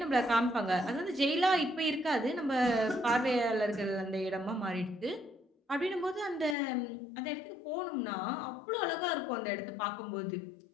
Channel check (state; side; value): drops out; right; at 6.6 s